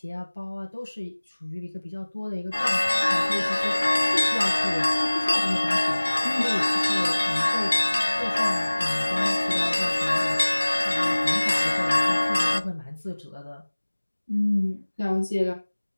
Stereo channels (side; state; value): both; inverted; correlation -1.00